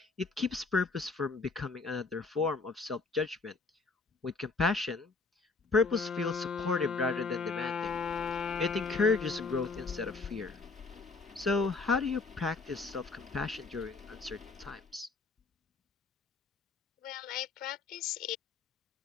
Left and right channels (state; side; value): quieter; right; 4.1 dB